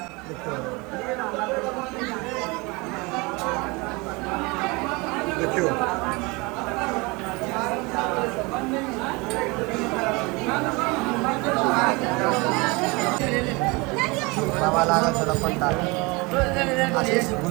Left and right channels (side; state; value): left; quieter; 26.2 dB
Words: देखियो बाबा लागल छल पंडा आशीष